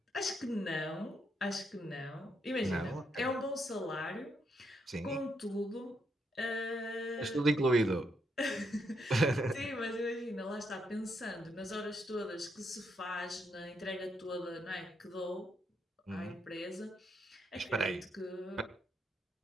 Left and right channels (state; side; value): normal; both; correlation 0.78